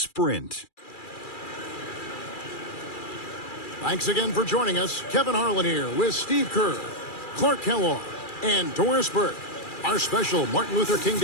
Thanks again for joining us. Kevin Harlan here with Steve Kerr, Clark Kellogg, and Doris Burke. Our special Martin Luther King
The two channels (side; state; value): right; late; 2.4 ms